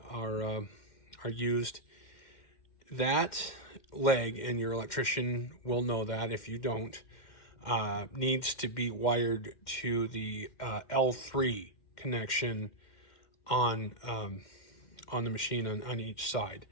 are used. That leg, and your electrician will know that if you don't, needs to be wired to the L3 connection on the machine on each side.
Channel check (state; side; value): late; right; 2.1 ms